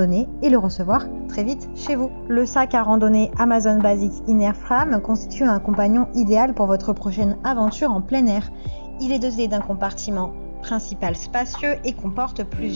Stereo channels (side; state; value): both; inverted; correlation -1.00